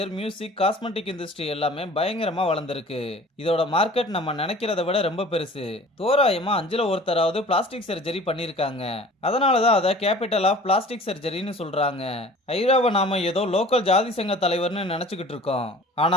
music, cosmetic industry எல்லாமே பயங்கரமா வளர்ந்துருக்கு. இதோட மார்க்கெட் நம்ம நினைக்கிறத விட ரொம்ப பெருசு. தோராயமா 5ல ஒருத்தராவது பிளாஸ்டிக் சர்ஜரி பண்ணிருக்காங்க. அதனாலதான் அதை கேபிட்டல் ஆஃப் பிளாஸ்டிக் சர்ஜரின்னு சொல்றாங்க. ஐராவை நாம ஏதோ லோக்கல் ஜாதி சங்க தலைவர்னு நினைச்சுக்கிட்டு இருக்கோம்.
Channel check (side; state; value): both; normal; correlation 0.46